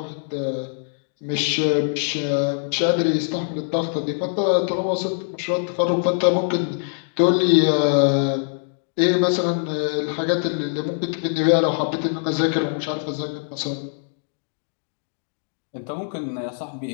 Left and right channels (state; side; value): silent; right; digital silence